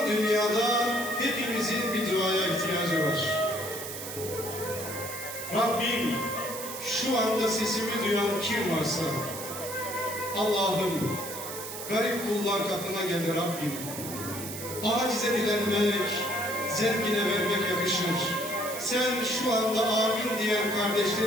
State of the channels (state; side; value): noise; right; hiss, 8 dB below the sound